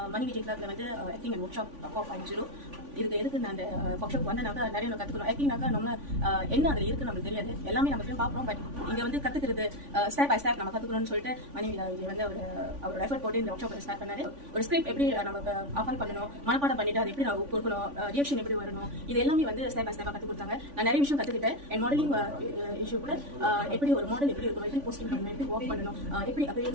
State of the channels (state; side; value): late; left; 3.5 ms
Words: மணி விஜய் கிளப்ல வந்து ஆக்டிங் அண்ட் ஒர்க் ஷாப் 4.0 எதுக்கு நான் அந்த ஒர்க் ஷாப் வந்தனாக்கா நிறைய நம்ம கற்றுக்கணும். ஆக்டிங்னாக்கா நம்ம என்ன அதில் இருக்குது நம்மளுக்கு தெரியாது, எல்லாமே நம்ம போய் பார்க்குறோம். பட் இங்கே வந்து கற்றுக்கிறது ஸ்டெப் பை ஸ்டெப் நம்ம கற்றுக்கணும்னு சொல்லிட்டு மணி விஜய் வந்து அவரோட எஃபர்ட் போட்டு இந்த ஒர்க் ஷாப் ஸ்டார்ட் பண்ணாரு. ஒரு ஸ்கிரிப்ட் எப்படி நமக்கு ஆஃபர் பண்ணணும், மனப்பாடம் பண்ணிட்டு அது எப்படி நான் கொடுக்கணும், ரியாக்ஷன் எப்படி வரணும், இது எல்லாமே வந்து ஸ்டெப் பை ஸ்டெப்பாக கற்றுக் கொடுத்தாங்க. நான் நிறைய விஷயம் கற்றுக்கிட்டேன். என் மாடலிங் இஷ்யூ கூட எப்படி ஒரு மாடல் எப்படி இருக்கணும், எப்படி போஸ்டிங் பண்ணணும், எப்படி ஒர்க் பண்ணணும், எப்படி